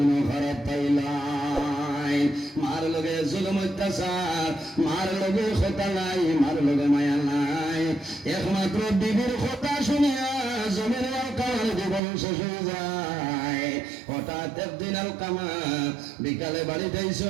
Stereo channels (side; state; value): left; drops out; at 12.0 s